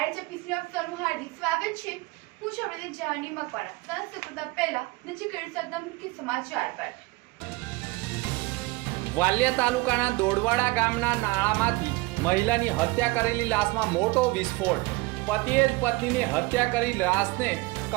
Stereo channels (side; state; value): left; quieter; 22.9 dB